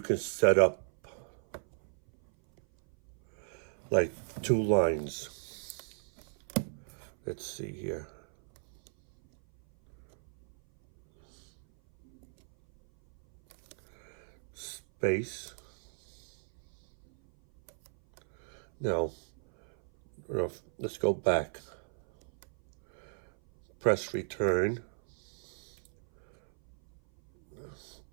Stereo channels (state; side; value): silent; left; 55 dB below the other